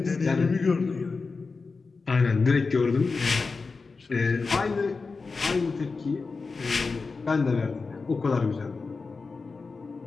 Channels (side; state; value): right; quieter; 4.3 dB